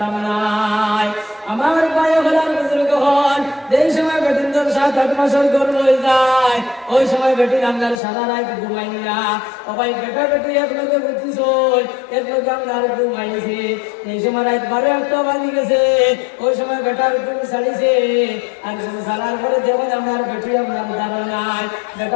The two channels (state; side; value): drops out; right; at 8.0 s